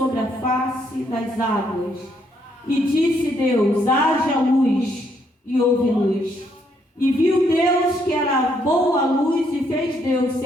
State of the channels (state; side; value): normal; both; correlation 0.72